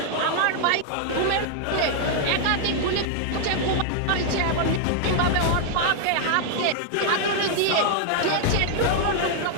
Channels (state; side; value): different; both; correlation 0.00